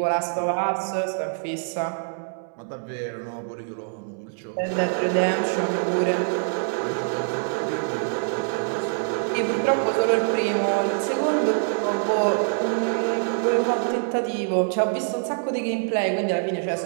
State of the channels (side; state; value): left; silent; 62 dB below the other